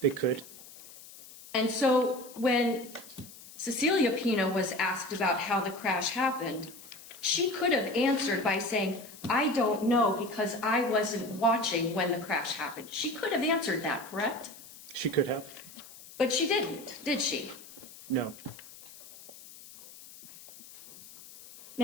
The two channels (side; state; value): left; noise; hiss, 18 dB below the sound